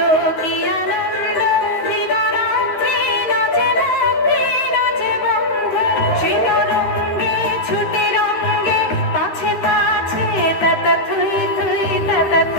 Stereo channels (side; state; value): right; late; 13 ms